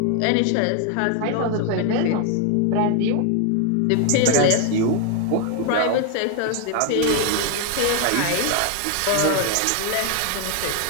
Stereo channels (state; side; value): different; both; correlation 0.01